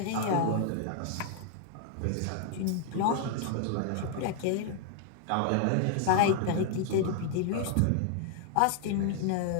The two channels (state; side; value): different; both; correlation 0.00